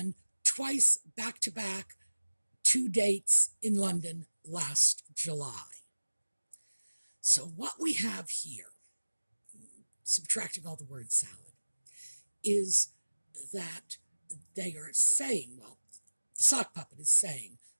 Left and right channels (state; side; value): inverted; both; correlation -1.00